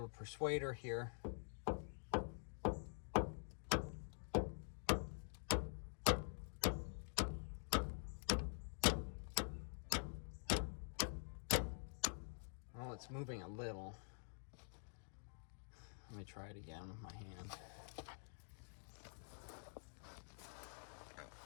persuader here. it's moving a little. Let me try it again with my hand.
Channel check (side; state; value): right; silent; digital silence